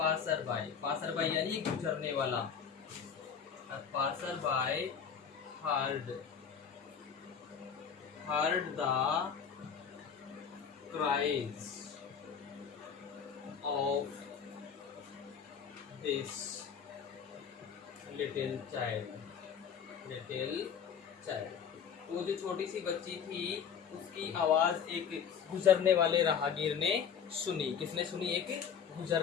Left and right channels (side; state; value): right; quieter; 7.2 dB